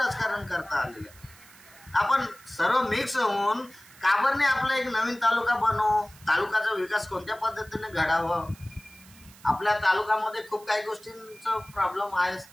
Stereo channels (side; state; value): right; noise; hiss, 23 dB below the sound